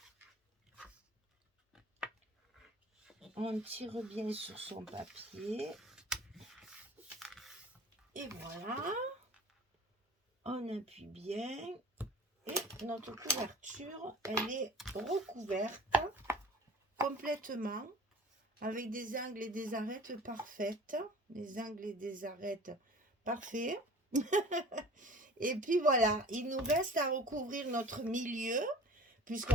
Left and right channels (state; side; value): normal; both; correlation 0.43